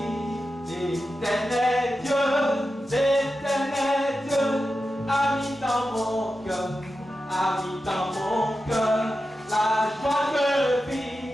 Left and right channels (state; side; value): normal; both; correlation 0.91